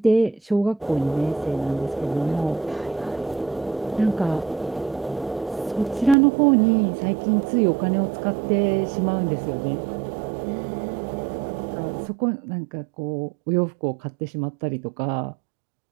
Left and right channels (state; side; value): drops out; left; at 6.2 s